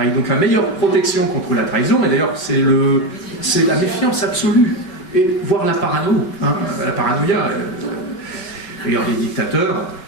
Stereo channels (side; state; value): right; late; 5.3 ms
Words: Donc la meilleure protection contre la trahison, et d'ailleurs c'est la méfiance absolue, et voire la parano. Hein. La paranoïa. D'ailleurs les dictateurs